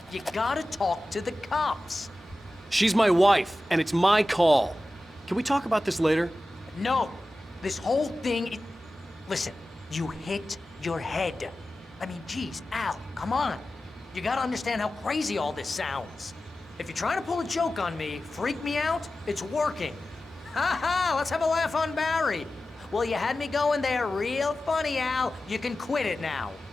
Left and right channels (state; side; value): normal; both; correlation 0.94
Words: You gotta talk to the cops. She's my wife, and it's my call. Can we talk about this later? No, this whole thing, listen, you hit your head. I mean, geez, Al, come on. You gotta understand how crazy all this sounds. If you're trying to pull a joke on me, freak me out, it's working. Ha ha, let's have a laugh on Barry. Well, you had me going there real funny, Al. You can quit it now.